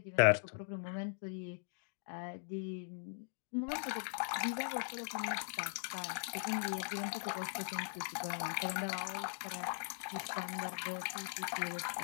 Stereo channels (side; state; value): right; silent; digital silence